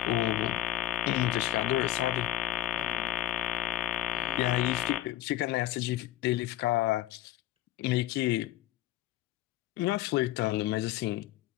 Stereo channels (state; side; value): quieter; right; 14.4 dB